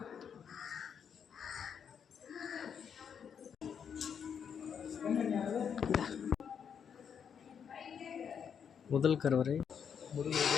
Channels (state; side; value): quieter; right; 7.4 dB